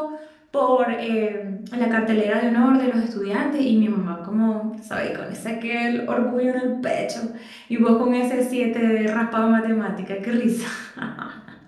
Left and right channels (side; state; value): both; identical; correlation 1.00